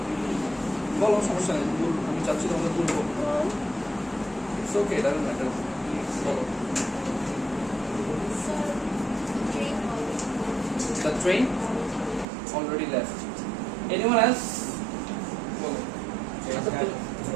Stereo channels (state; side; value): drops out; left; at 12.2 s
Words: বলো সমস্যা নেই আমি চাচ্ছি তোমাদের বলবো It's okay, it doesn't matter. বলো The train already left. Anyone else? বলো